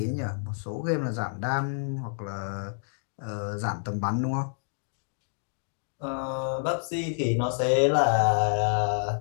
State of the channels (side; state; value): right; silent; digital silence